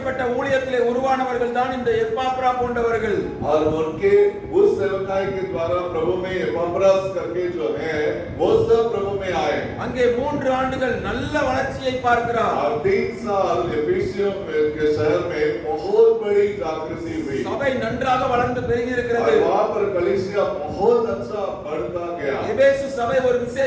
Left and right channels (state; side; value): identical; both; correlation 1.00